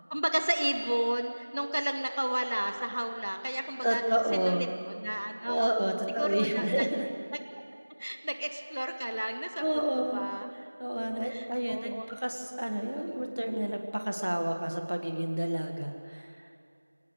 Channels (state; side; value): inverted; both; correlation -1.00